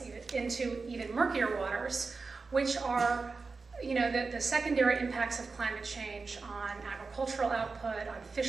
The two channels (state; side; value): quieter; left; 4.3 dB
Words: into even murkier waters, which are the secondary impacts of climate change on agricultural output, on